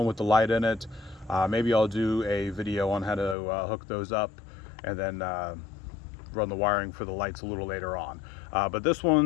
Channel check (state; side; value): drops out; right; at 3.4 s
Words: with the light in it. Maybe I'll do a video on how to hook those up and then run the wiring for the lights a little later on. But this